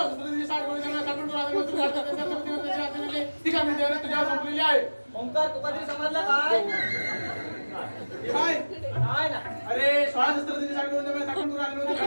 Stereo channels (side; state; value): both; inverted; correlation -1.00